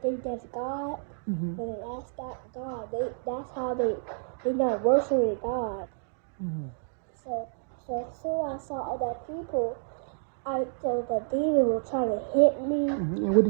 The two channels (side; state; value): left; silent; digital silence